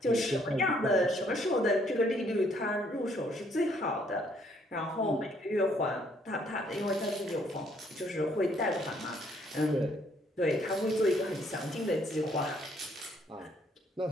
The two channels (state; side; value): normal; both; correlation 0.67